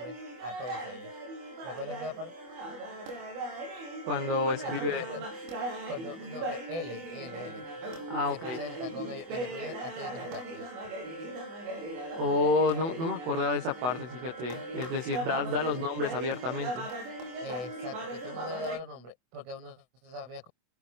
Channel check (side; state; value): left; late; 24 ms